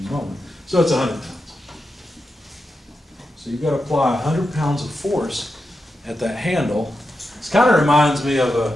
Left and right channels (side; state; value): both; normal; correlation 0.89